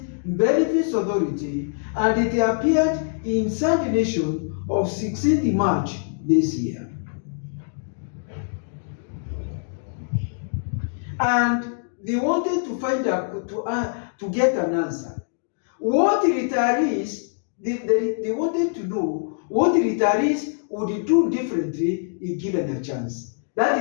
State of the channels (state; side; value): silent; right; digital silence